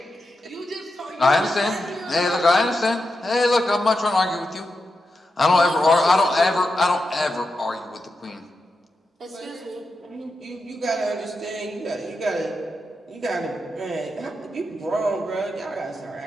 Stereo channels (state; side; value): normal; both; correlation 0.88